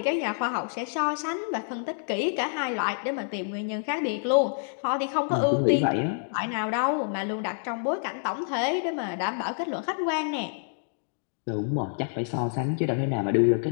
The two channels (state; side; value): silent; right; digital silence